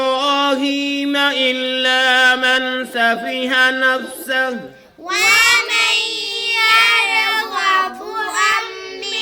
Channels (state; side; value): identical; both; correlation 1.00